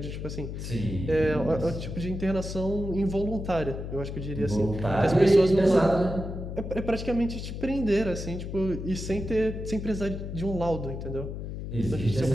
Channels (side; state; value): left; noise; hum, 7 dB below the sound